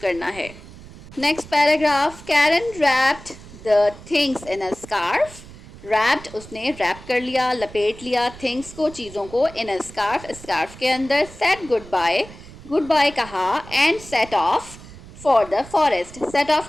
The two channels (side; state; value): right; noise; rumble, 18 dB below the sound